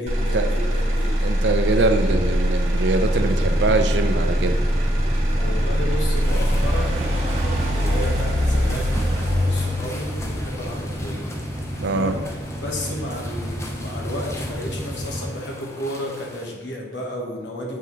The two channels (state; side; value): normal; both; correlation 0.73